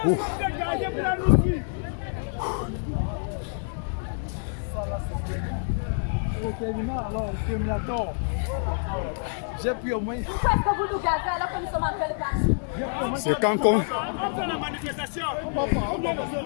J'ai pris au moins. Pourquoi est-ce que vous nous gazez alors que nous sommes en train de partir? C'est quand qu'on... On fait la manifestation.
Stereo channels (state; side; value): silent; right; digital silence